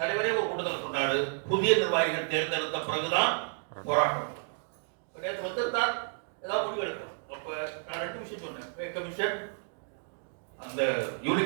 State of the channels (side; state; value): left; silent; 57 dB below the other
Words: ஒரு கூட்டத்தில் சொன்னாரு, புதிய நிர்வாகிகள் தேர்ந்தெடுத்த பிறகுதான் போராட்டம். நேற்று வந்திருந்தால் ஏதாவது முடிவு எடுக்கணும். அப்ப நான் 2 விஷயம் சொன்னேன். பே கமிஷன், அந்த